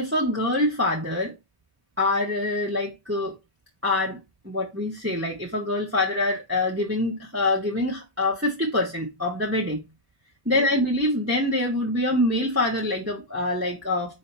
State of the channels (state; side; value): late; left; 1.0 ms